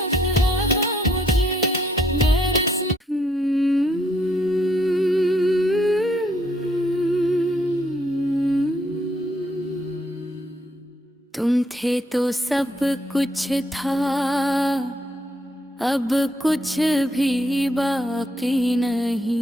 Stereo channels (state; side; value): normal; both; correlation 0.71